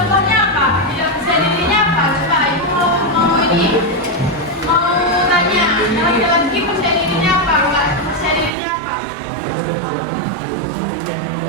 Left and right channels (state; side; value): drops out; left; at 8.6 s